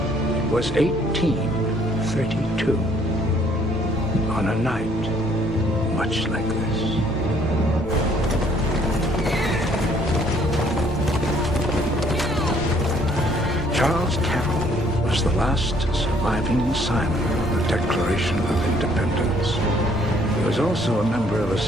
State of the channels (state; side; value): normal; both; correlation 0.63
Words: It was 1832. On a night much like this. Charles Carroll was the last surviving signer of the Declaration of Independence. He was also a member of a